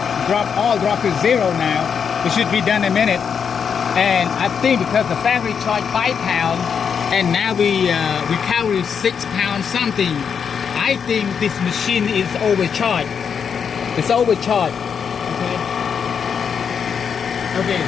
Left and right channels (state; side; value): quieter; right; 6.9 dB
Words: all dropped to zero now. It should be done in a minute. And I think because the factory charged £5, and now we recover £6 something. I think this machine is overcharged. It's overcharged. Okay. Okay,